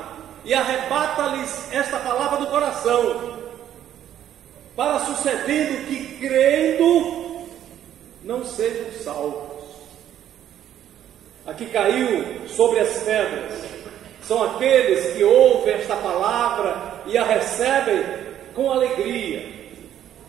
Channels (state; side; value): quieter; left; 10.9 dB